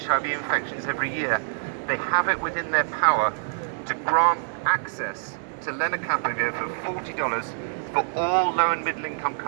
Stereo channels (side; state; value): left; silent; digital silence